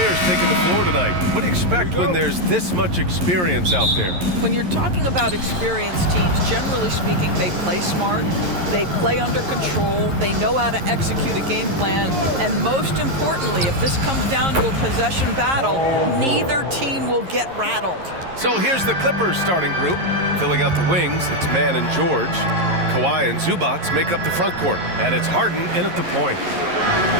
taking the floor tonight. What do you expect when there's this much experience out there? When you're talking about experienced teams, generally speaking, they play smart, they play under control, they know how to execute a game plan, and most importantly, if this comes down to a possession battle, neither team will get rattled. So here's the Clippers starting group. Filling out the wings, it's Mann and George. Kawhi and Zubac make up the front court, and it's Harden in at the point.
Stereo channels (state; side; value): late; left; 11 ms